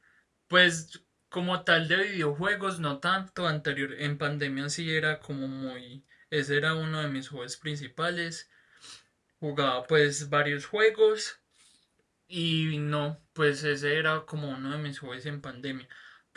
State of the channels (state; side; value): identical; both; correlation 1.00